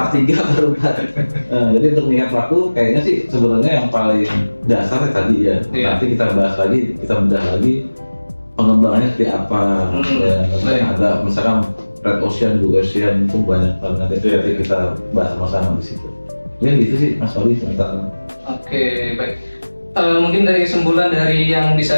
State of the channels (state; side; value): inverted; both; correlation -1.00